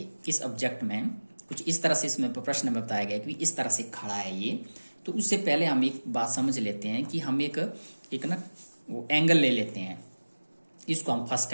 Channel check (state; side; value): inverted; both; correlation -1.00